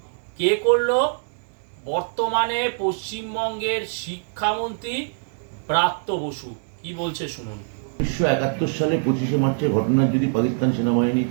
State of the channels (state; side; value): silent; left; digital silence